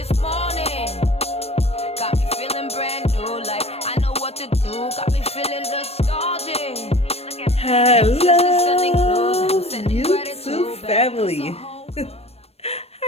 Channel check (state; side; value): late; right; 0.29 ms